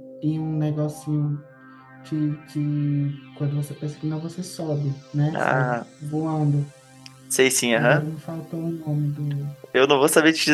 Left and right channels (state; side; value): identical; both; correlation 1.00